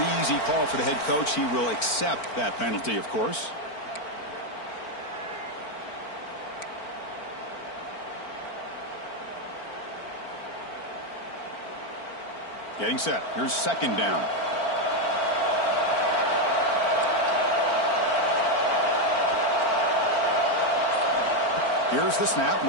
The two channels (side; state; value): right; late; 4.4 ms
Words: easy call for the head coach. He will accept that penalty, of course. Getting set. Here's second down. Here's the snap.